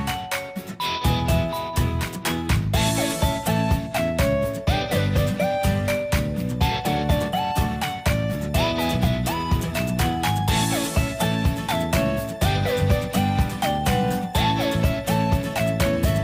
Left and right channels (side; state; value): both; identical; correlation 1.00